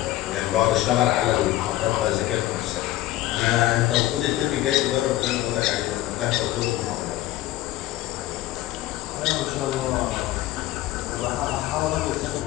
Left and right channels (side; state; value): right; quieter; 15.5 dB